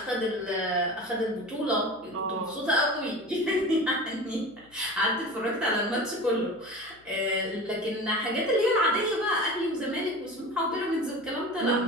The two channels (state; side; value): noise; left; hum, 29 dB below the sound